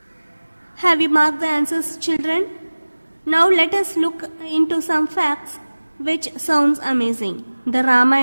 Have you marked the answers, children? Now let us look into some facts which sounds amazing. The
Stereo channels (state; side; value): inverted; both; correlation -1.00